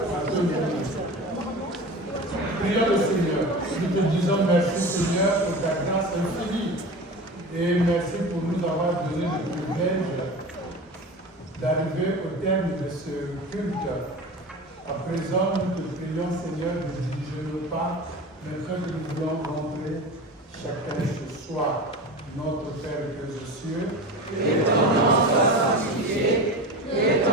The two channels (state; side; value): normal; both; correlation 0.31